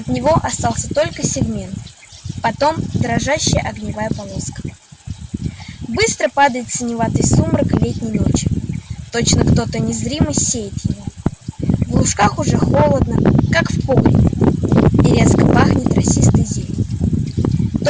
него остался только сегмент, потом дрожащая огневая полоска. Быстро падает синеватый сумрак летней ночи, точно кто-то незримый сеет его. В лужках уже холодно, как в погребе, и резко пахнет росистой зеленью.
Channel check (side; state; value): both; identical; correlation 1.00